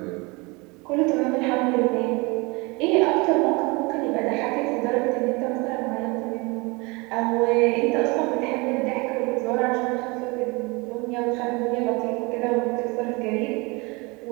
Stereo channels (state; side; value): quieter; left; 26.7 dB